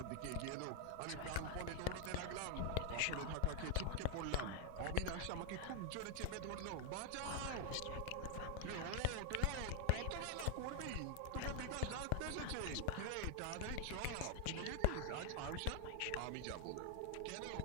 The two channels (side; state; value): both; different; correlation 0.00